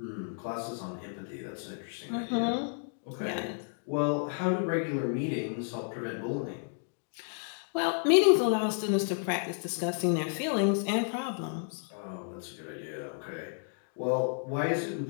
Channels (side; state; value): right; silent; 56 dB below the other